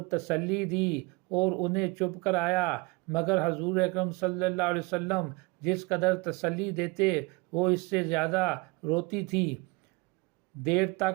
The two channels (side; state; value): left; quieter; 25.4 dB